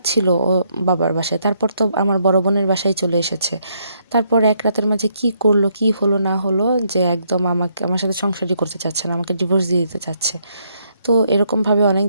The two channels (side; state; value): both; inverted; correlation -0.74